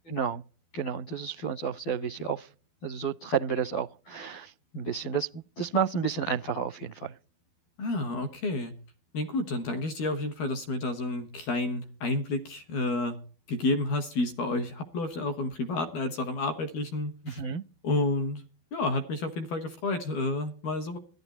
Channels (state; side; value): late; right; 12 ms